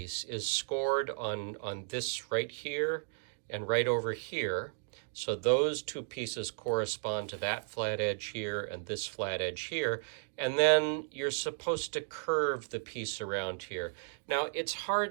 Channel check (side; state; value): left; silent; digital silence